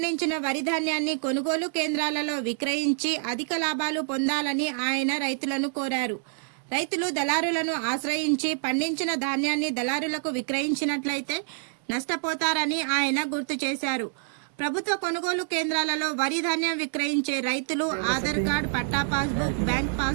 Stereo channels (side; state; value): left; silent; 60 dB below the other